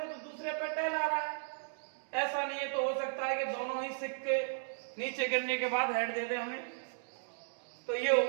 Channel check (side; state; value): left; silent; digital silence